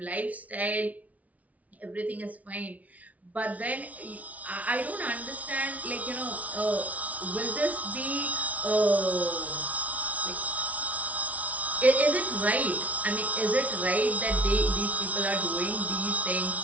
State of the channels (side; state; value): left; late; 0.070 ms